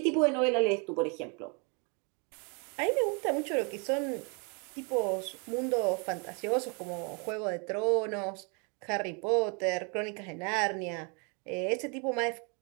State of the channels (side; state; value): left; quieter; 35.0 dB